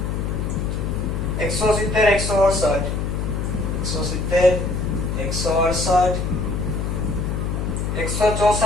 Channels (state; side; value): noise; left; hum, 1 dB below the sound